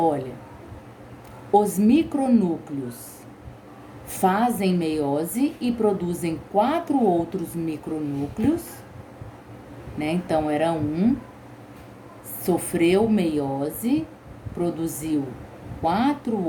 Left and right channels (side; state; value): both; identical; correlation 1.00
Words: os micronúcleos fazem meiose e produzem 4 outros micronúcleos, né? Então, era um, sofreu meiose, produziu 4